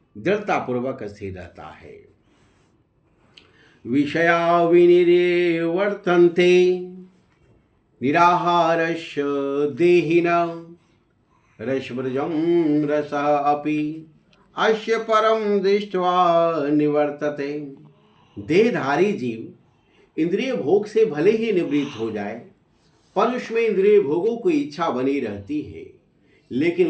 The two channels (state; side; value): identical; both; correlation 1.00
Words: दृढ़तापूर्वक स्थिर रहता है। विषया विनिवर्तन्ते निराहारस्य देहिनः रसव्रजं रसः अपि अस्य परम दृष्ट्वा निवर्तते। देहधारी जीव इंद्रिय भोग से भले ही निवृत्त हो जाए, पर उसमें इंद्रिय भोगों की इच्छा बनी रहती है।